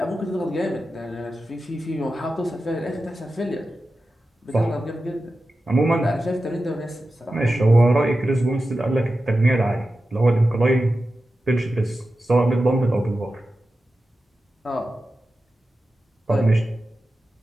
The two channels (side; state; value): both; normal; correlation 0.92